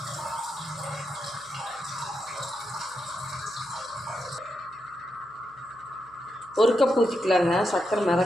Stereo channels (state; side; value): noise; right; hum, 28 dB below the sound